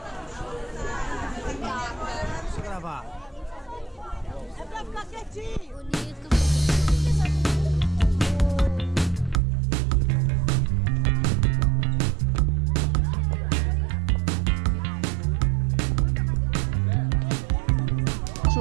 Deixa eu gravar. É pra ficar quietinho. Bonito.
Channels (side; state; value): left; drops out; at 9.4 s